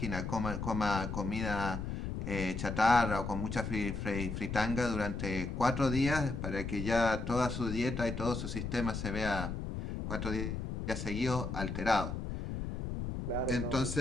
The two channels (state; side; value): noise; left; rumble, 4 dB below the sound